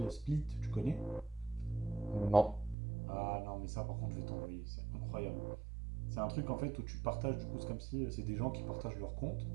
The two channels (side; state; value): left; drops out; at 2.8 s